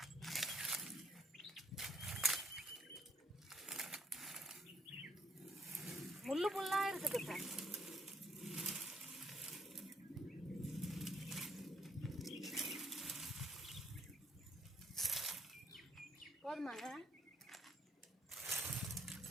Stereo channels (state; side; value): normal; both; correlation 0.69